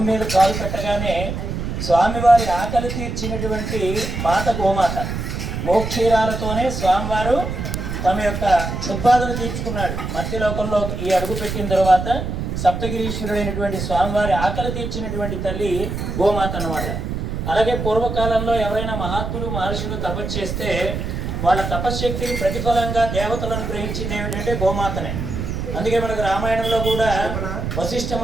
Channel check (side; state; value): right; noise; rumble, 4 dB below the sound